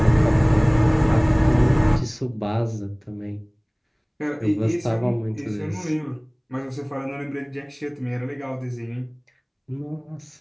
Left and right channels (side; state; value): both; identical; correlation 1.00